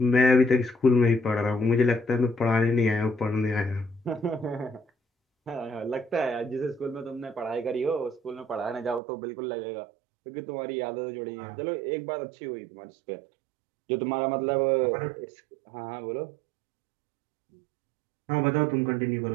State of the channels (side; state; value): left; drops out; at 9.0 s